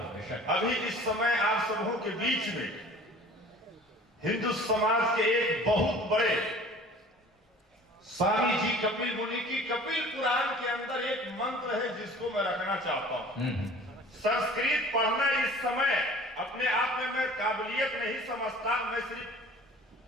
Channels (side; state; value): both; normal; correlation 0.46